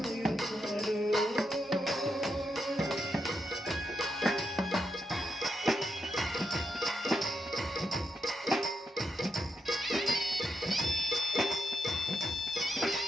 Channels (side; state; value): both; normal; correlation 0.83